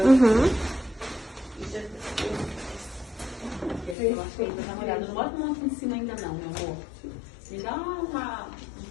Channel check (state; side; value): drops out; right; at 4.0 s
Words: acho que ainda tá molhado. Não bota muito em cima ainda não, meu amor. Me dá um